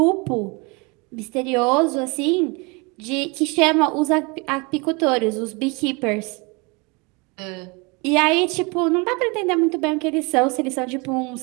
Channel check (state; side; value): quieter; left; 29.0 dB